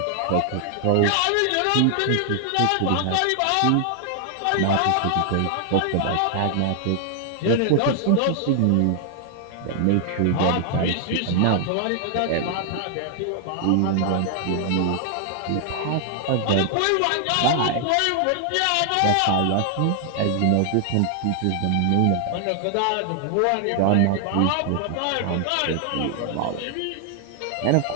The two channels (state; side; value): different; both; correlation 0.00